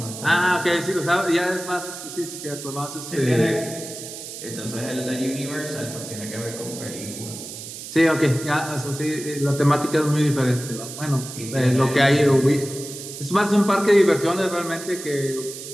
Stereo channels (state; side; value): noise; right; hiss, 11 dB below the sound